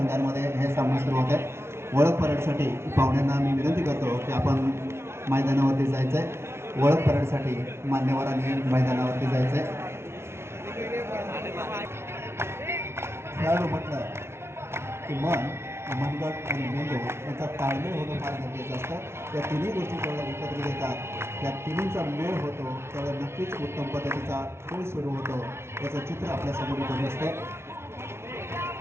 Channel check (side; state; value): left; late; 0.12 ms